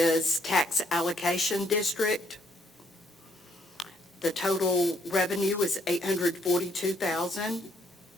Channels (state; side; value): normal; both; correlation 0.70